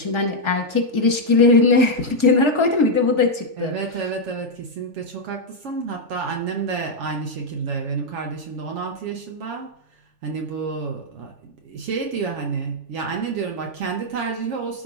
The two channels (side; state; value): left; late; 3.4 ms